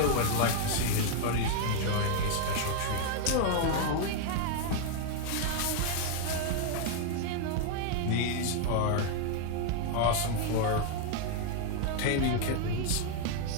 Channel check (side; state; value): both; different; correlation 0.00